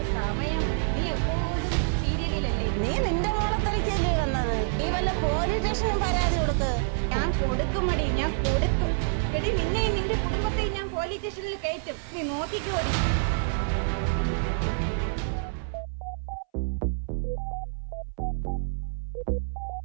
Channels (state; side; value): silent; left; 60 dB below the other